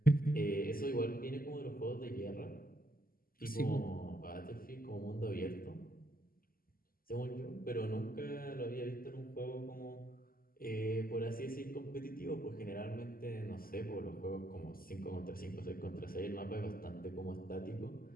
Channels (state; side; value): late; right; 0.42 ms